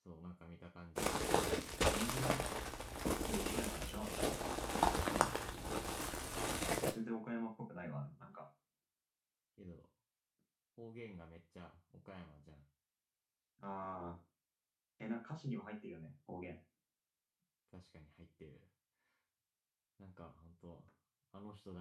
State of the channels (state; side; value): identical; both; correlation 1.00